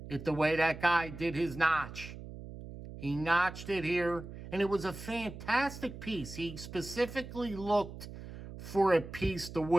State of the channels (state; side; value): noise; right; hum, 12 dB below the sound